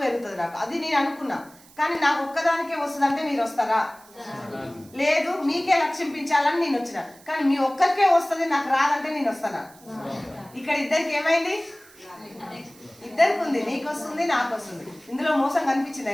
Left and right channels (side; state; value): right; noise; hiss, 25 dB below the sound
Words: పెరుగుతుంది నాకు. అది నేను అనుకున్నా. కానీ నాకు ఒక్కదానికే వస్తుందంటే మీరు వస్తారా? లేదు, మీకే లక్ష్యించాలని నేను వచ్చిన. కానీ మీ ఒక్కరికే వస్తుంది, నాకు రాదంటే నేను వస్తానా? ఇక్కడ ఇద్దరికి ఏమైంది? ఇద్దరికి ఉంది. నీకు వస్తుంది, నాకు వస్తుంది. ఇందులో మోసం కనిపించింది